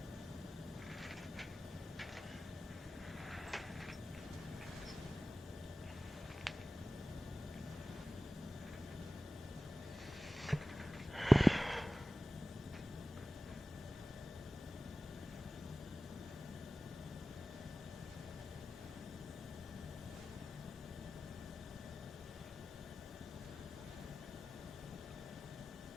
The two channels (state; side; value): normal; both; correlation 0.96